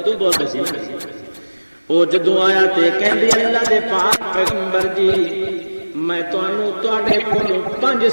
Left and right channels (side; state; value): both; inverted; correlation -1.00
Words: بولتے سی، وہ جدوں آیا تے کہندی اللہ دے پاک پیغمبر جی میں تانوں تواڈے کولوں 5